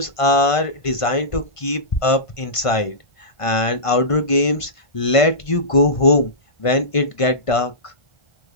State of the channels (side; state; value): right; late; 1.5 ms